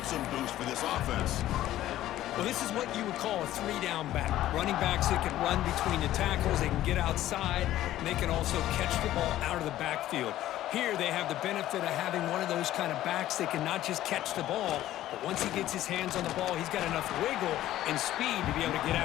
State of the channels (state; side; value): quieter; right; 13.9 dB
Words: boost for this offense. Well, this is what you would call a 3-down back. Running backs that can run between the tackles, they can get outside, and they can also catch the ball out of the backfield. Here they have the benefit of having one of those kind of backs that can not just catch the ball, but once he gets his hands on the ball, he's got enough wiggle and speed to be able to get